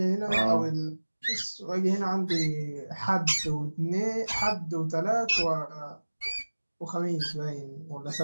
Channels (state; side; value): inverted; both; correlation -1.00